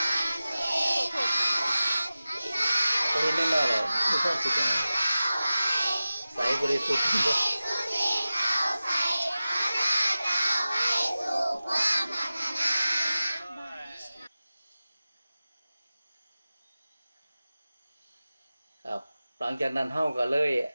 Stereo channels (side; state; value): both; inverted; correlation -0.95